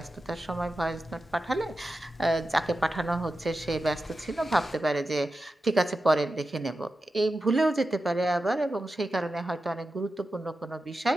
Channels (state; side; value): normal; both; correlation 0.92